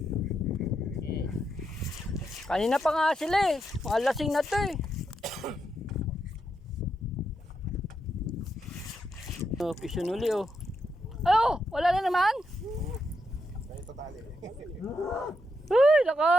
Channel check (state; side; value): normal; both; correlation 0.82